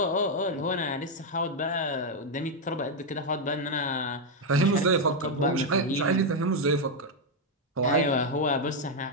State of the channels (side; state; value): both; normal; correlation 0.02